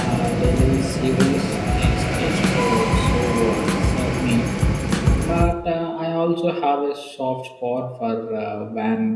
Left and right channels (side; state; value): both; identical; correlation 1.00